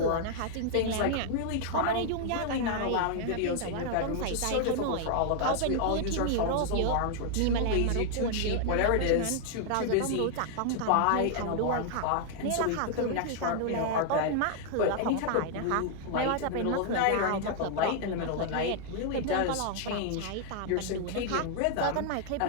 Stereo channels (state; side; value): different; both; correlation 0.00